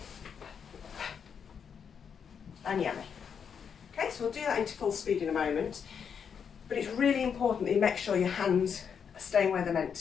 And yummy. Okay, so we'll do that into full speed in a moment, but it's really important that you make sure your hands are staying where they're meant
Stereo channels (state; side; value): quieter; right; 7.1 dB